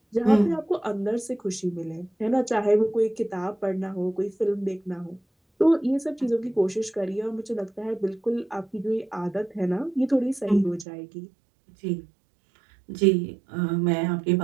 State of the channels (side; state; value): left; drops out; at 10.9 s